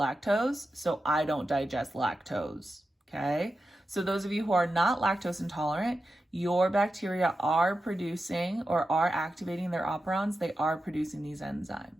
so I don't digest lactose, okay? So those of you who are not lactose intolerant, your bacteria are producing or are activating their operons. They are producing these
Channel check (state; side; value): normal; both; correlation 0.91